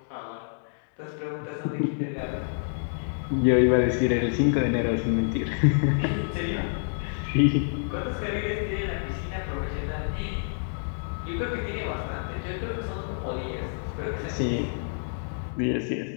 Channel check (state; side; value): silent; right; digital silence